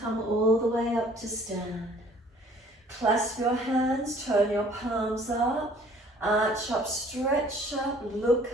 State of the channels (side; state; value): both; normal; correlation 0.55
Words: all the way up to stand. Clasp your hands, turn your palms up, arch up, stretch up, look